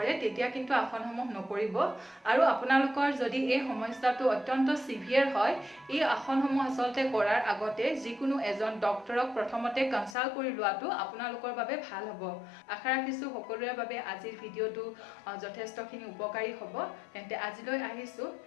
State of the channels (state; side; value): drops out; right; at 10.2 s